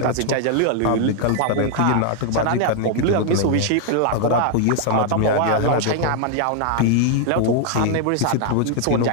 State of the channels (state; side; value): different; both; correlation 0.00